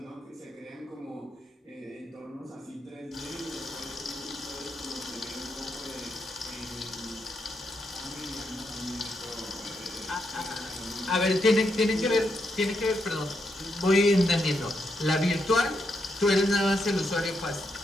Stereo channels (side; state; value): both; normal; correlation 0.81